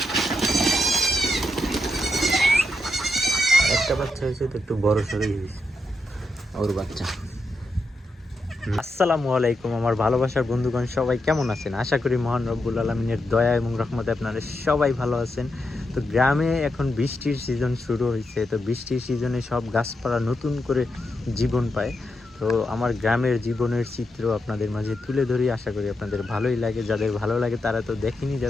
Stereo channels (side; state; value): both; normal; correlation 0.84